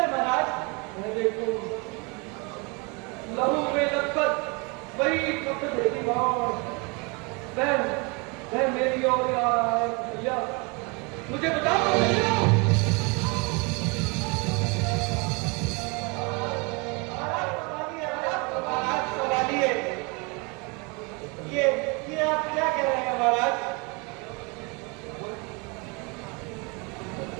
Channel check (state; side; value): quieter; left; 30.0 dB